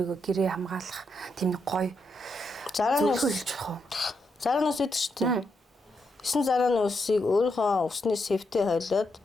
гэрээ хамгаалах тийм нэг гоё зарааны хэлж болох уу? Зарааны ус гэдэг шүү дээ. 9 зарааны усыг өөрийнхөө усны сэвтээ хойлоод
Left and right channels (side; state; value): both; normal; correlation 0.81